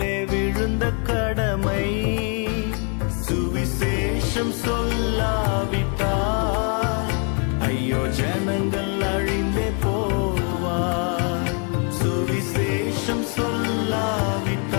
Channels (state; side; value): quieter; right; 38.1 dB